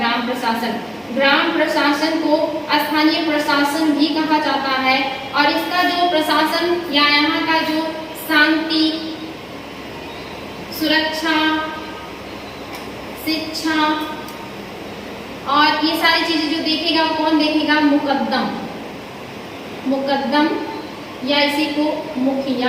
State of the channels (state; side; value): identical; both; correlation 1.00